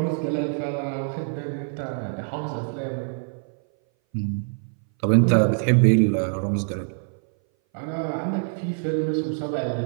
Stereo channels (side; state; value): left; silent; 59 dB below the other